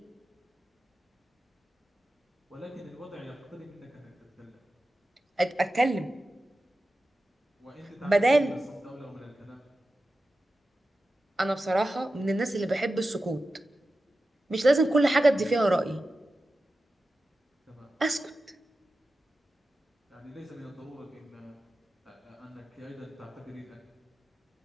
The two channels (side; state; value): both; normal; correlation 0.93